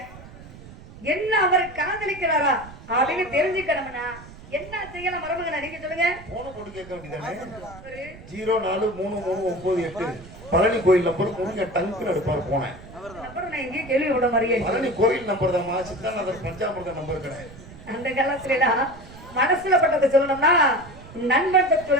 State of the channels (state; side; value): noise; right; rumble, 17 dB below the sound